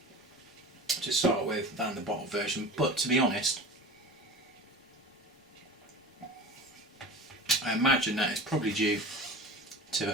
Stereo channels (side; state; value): both; normal; correlation 0.35